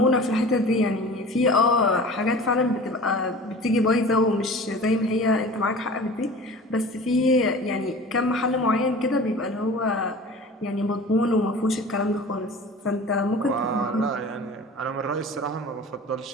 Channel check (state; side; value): normal; both; correlation 0.40